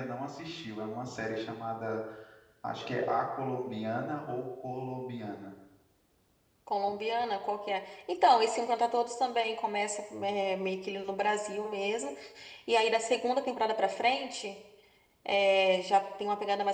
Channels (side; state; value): both; identical; correlation 1.00